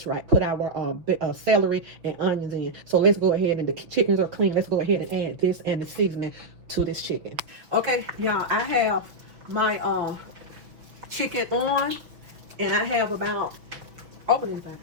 right? Put our celery and onions in. So let's go ahead, and the chickens are clean. Let's go ahead and add this and the seasoning to this chicken. Okay, y'all, I have my chicken on, and I have about, open anything.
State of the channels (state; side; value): late; left; 6.1 ms